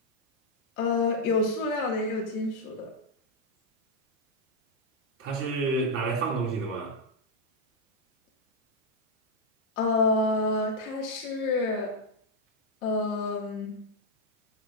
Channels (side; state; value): both; normal; correlation -0.01